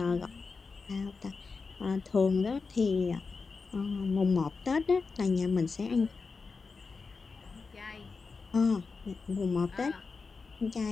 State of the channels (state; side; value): quieter; right; 4.6 dB